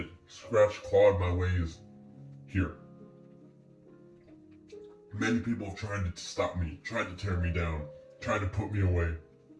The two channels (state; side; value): identical; both; correlation 1.00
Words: scratched, clawed my ways here. Many people have tried to stop me, tried to tear me down, tried to put me away.